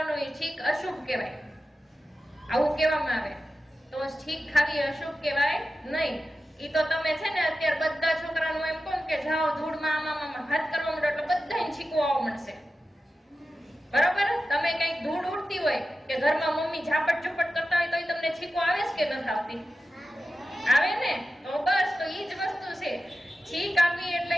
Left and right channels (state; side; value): normal; both; correlation 0.93